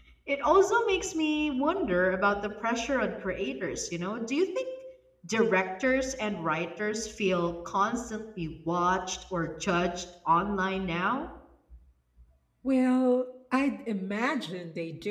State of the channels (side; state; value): both; identical; correlation 1.00